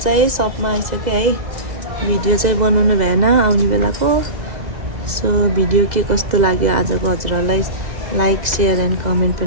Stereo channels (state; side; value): late; left; 2.0 ms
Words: सपमा आइसकेँ है भिडियो चाहिँ बनाउनु भएन आउने बेलाको सो भिडियो के कस्तो लाग्यो आजको हजुरहरूलाई लाइक सेयर एन्ड कमेन्ट